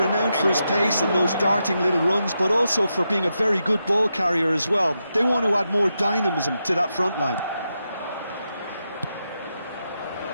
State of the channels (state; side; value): inverted; both; correlation -0.86